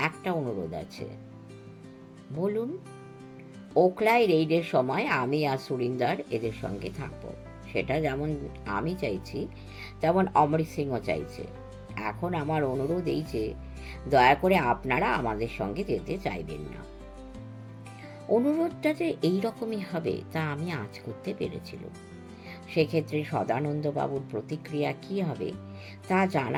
একটা অনুরোধ আছে। বলুন। ওখলায় রেইডের সময় আমি আর সুরিন্দর এদের সঙ্গে থাকব, সেটা যেমন আমি চাইছি তেমন অমরিত সিংও চাইছে। এখন আমার অনুরোধ এই যে দয়া করে আপনারা আমাদের সঙ্গে যেতে চাইবেন না। অনুরোধটা যে এইরকমই হবে তা আমি আজ করতে পেরেছিলাম। সেক্ষেত্রে সদানন্দবাবুর প্রতিক্রিয়া কি হবে তা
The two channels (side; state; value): both; identical; correlation 1.00